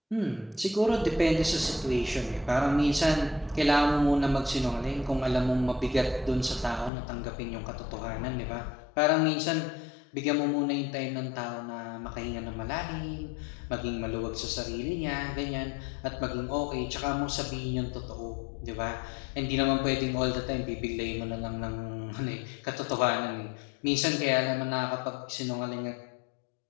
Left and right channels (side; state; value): right; drops out; at 6.9 s